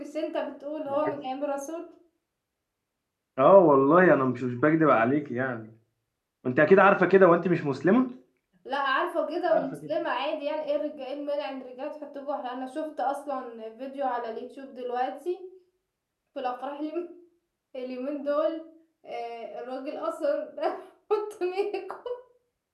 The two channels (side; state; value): both; identical; correlation 1.00